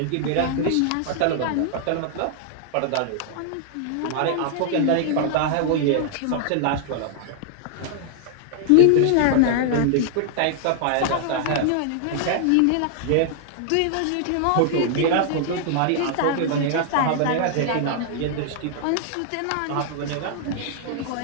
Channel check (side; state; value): both; different; correlation 0.00